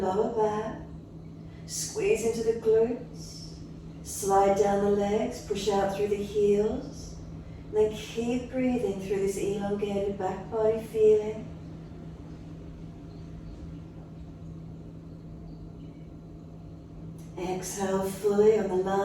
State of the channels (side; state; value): both; identical; correlation 1.00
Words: back. Squeeze into the glutes. Slide down the legs, push out through the heels. And then keep breathing through this elongated back body feeling. Exhale fully. On the